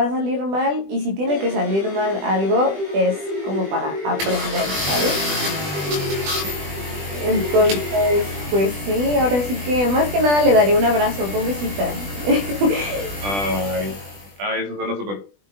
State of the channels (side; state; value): left; late; 20 ms